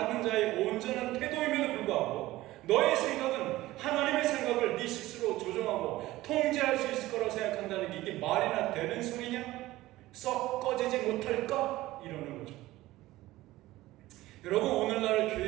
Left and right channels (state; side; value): quieter; left; 17.2 dB